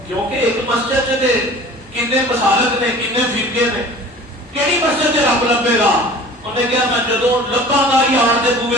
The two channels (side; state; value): both; normal; correlation 0.44